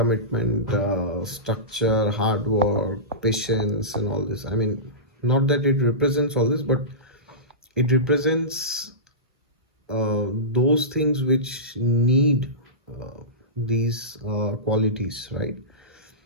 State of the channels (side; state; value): both; normal; correlation -0.19